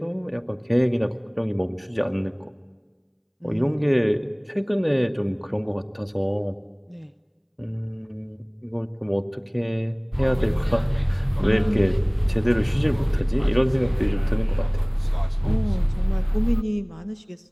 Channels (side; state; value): both; identical; correlation 1.00